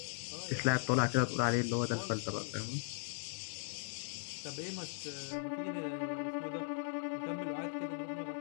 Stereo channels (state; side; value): silent; right; digital silence